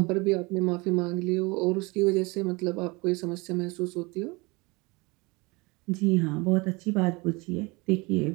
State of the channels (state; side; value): quieter; left; 26.0 dB